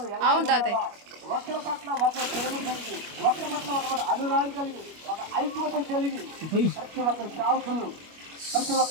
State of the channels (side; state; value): left; late; 25 ms